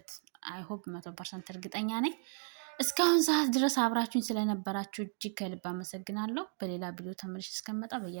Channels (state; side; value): silent; left; 54 dB below the other